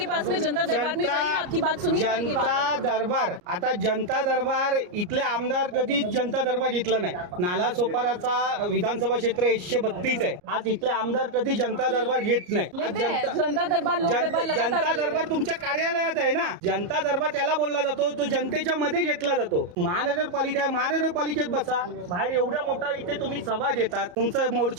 पास में जनता दरबार में जाइए, आपकी बात सुनी जाएगी। जनता दरबार, आता जनता दरबार इथले आमदार कधी जनता दरबार घेतला नाही. नाला सोपाराचा विधानसभा क्षेत्र 132 आहे. आज इथले आमदार कधी जनता दरबार घेत नाही. लेते हैं, जनता दरबार, लोक दरबार लगातार जनता ले रहे दरबार हैं। तुमच्या कार्यालयात आहे ना. जनता दरबार त्याला बोलला जातो, तो जनतेच्या मध्ये घेतला जातो. महानगरपालिका आहे, महानगरपालिकेत बसा. बाहेर एवढा मोठा इथे तुम्ही सभा घेतात, तुमचं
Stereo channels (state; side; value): late; left; 34 ms